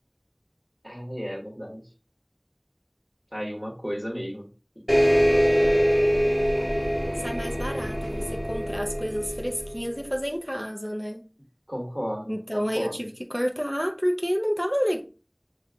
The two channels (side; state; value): both; identical; correlation 1.00